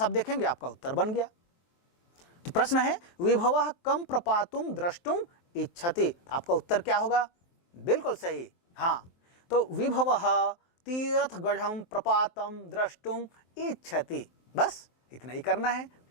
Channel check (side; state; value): right; late; 23 ms